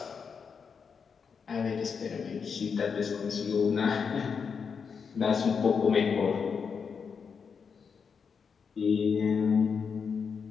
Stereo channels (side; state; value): right; quieter; 6.0 dB